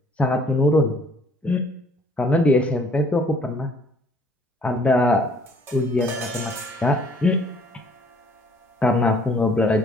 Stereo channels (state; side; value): normal; both; correlation 0.59